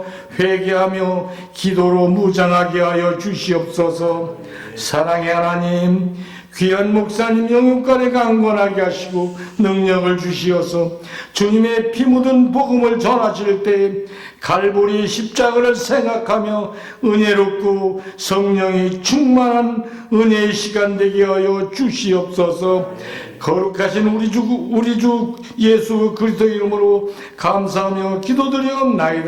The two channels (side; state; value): both; identical; correlation 1.00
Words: 회개하며 기도로 무장하게 하여 주시옵소서. 사랑의 하나님, 귀한 목사님 영육간에 강건하게 하시고 능력을 주시어서 주님의 피 묻은 복음을 전하실 때 갈보리 십자가를 생각하며 은혜롭고 성령이 충만한 은혜의 시간 되게 하여 주시옵소서. 거룩하신 우리 주 예수 그리스도 이름으로 감사하며